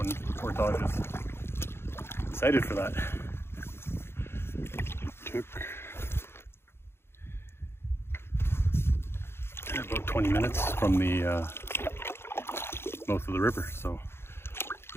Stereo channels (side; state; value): right; late; 0.12 ms